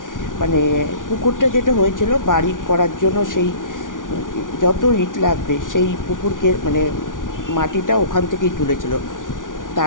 মানে পুকুরটা যেটা হয়েছিল বাড়ি করার জন্য, সেই যত ইট লাগবে সেই পুকুরকে মানে মাটিটা ওখান থেকেই তুলেছিল,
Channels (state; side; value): late; right; 0.88 ms